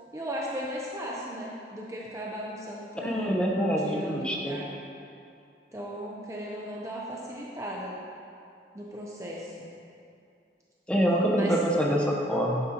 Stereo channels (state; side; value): normal; both; correlation 0.62